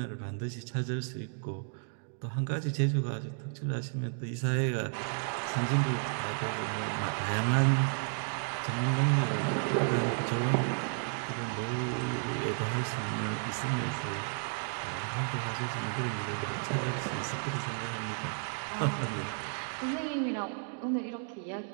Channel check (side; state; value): left; silent; 56 dB below the other